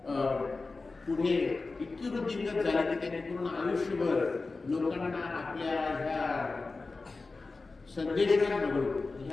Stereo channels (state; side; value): quieter; right; 3.7 dB